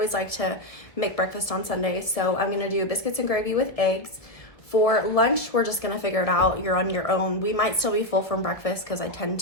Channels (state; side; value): late; right; 1.7 ms